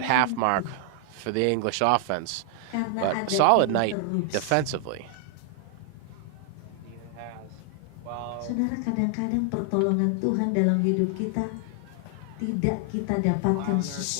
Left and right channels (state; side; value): different; both; correlation 0.00